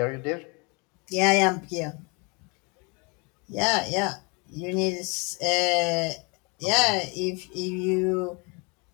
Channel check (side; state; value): right; quieter; 30.8 dB